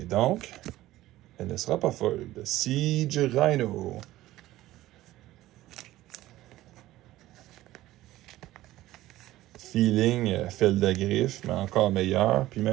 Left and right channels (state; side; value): quieter; left; 15.8 dB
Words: donc elle ne sera pas folle. Siege Rhino. Feeling Feldagriffe, mais encore meilleur. Puis